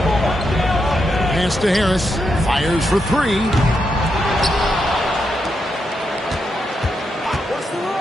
Pass to Harris. Fires for 3.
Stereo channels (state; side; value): normal; both; correlation 0.83